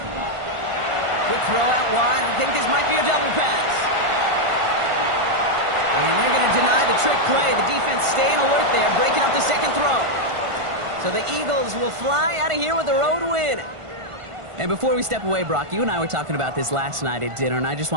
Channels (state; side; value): late; left; 1.5 ms